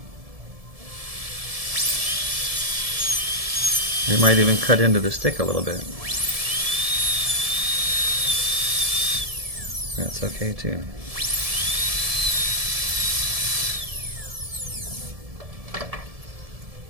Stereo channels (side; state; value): left; late; 1.7 ms